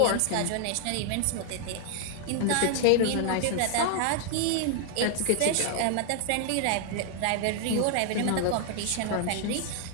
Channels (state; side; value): different; both; correlation 0.00